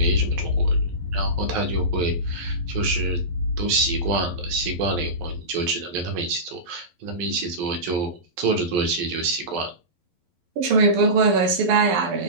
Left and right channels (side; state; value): left; late; 11 ms